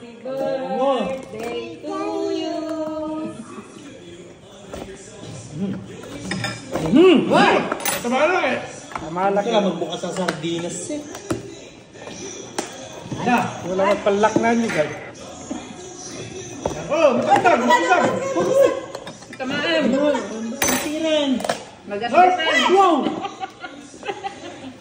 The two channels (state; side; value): identical; both; correlation 1.00